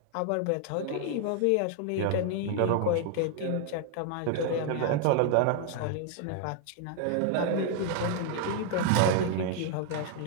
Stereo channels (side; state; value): both; different; correlation 0.00